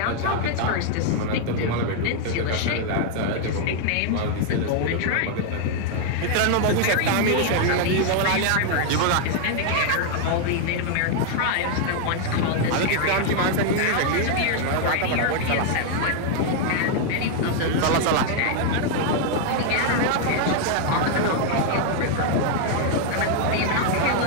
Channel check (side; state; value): both; different; correlation 0.00